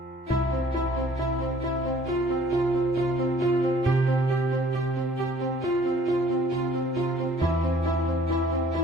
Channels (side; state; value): both; normal; correlation 0.55